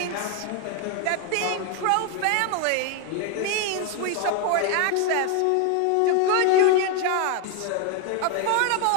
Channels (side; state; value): both; different; correlation 0.01